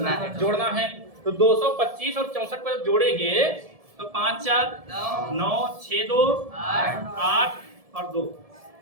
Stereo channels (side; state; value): left; late; 1.7 ms